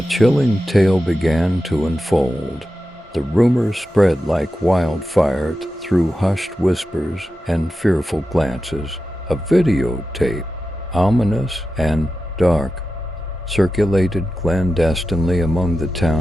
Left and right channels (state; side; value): normal; both; correlation 0.92